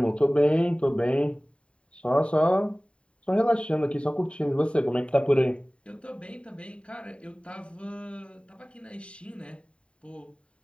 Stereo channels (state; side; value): late; right; 0.058 ms